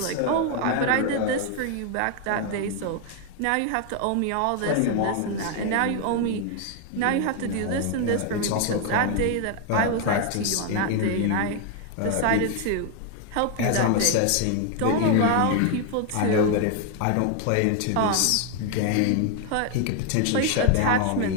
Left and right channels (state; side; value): different; both; correlation 0.01